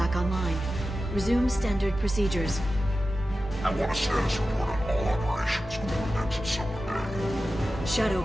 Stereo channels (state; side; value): normal; both; correlation 0.93